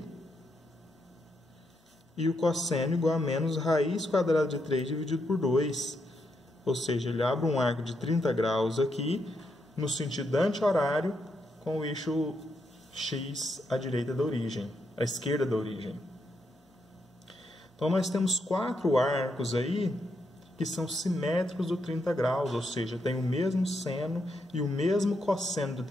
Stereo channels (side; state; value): both; normal; correlation 0.80